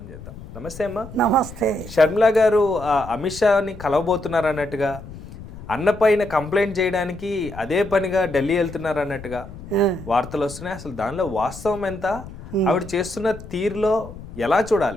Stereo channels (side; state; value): left; noise; rumble, 14 dB below the sound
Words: చేద్దాం. నమస్తే అమ్మ. నమస్తే. షర్మిలా గారు అమిత్ షాని కలవబోతున్నారు అన్నట్టుగా, అన్నపైన కంప్లైంట్ చేయడానికి అదే పనిగా ఢిల్లీ వెళ్తున్నారు అన్నట్టుగా వార్తలు వస్తున్నాయి. అసలు దానిలో వాస్తవం ఎంత, ఆవిడ చేస్తున్న